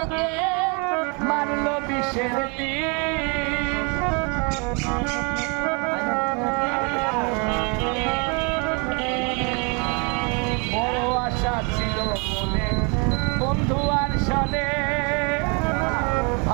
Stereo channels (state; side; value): quieter; left; 33.2 dB